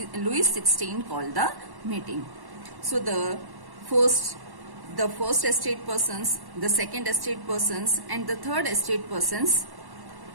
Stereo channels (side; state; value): left; late; 1.1 ms